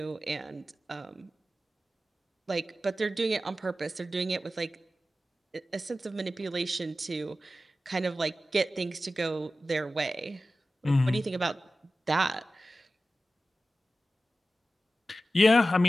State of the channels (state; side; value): normal; both; correlation 0.94